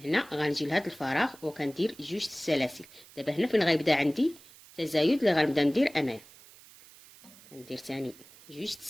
غنجي لهذا الفراغ وكندير 2 السلاسل. دابا هنا فين غيبدا عندي تزايد اللي غنبدا ندير انايا، كندير تاني 2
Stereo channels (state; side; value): noise; right; hiss, 22 dB below the sound